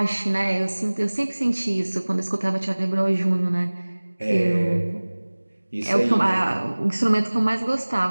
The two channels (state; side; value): inverted; both; correlation -1.00